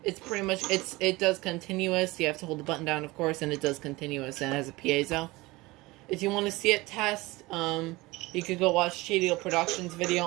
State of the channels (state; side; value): quieter; left; 21.4 dB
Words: it's pretty much, it does continuous. You have to hold the button down, of course, and it does continuous, and it has a piezo. If you want to see it test, you could go watch Shady Productions video